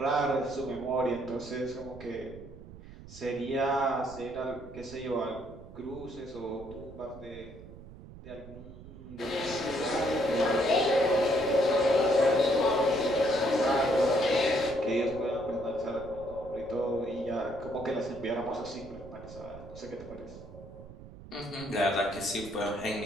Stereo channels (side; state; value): right; noise; rumble, 16 dB below the sound